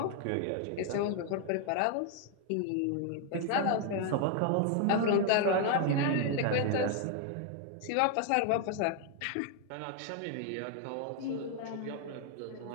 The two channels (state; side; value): different; both; correlation 0.00